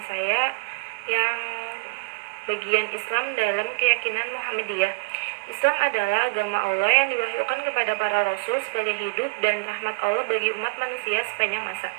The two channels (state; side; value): quieter; left; 30.6 dB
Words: saya yang bagian Islam dalam keyakinan Muhammadiyah. Islam adalah agama Allah yang diwahyukan kepada para rasul sebagai hidup dan rahmat Allah bagi umat manusia sepanjang masa,